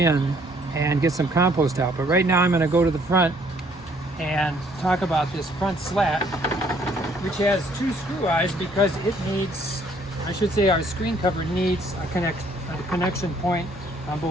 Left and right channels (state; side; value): normal; both; correlation 0.63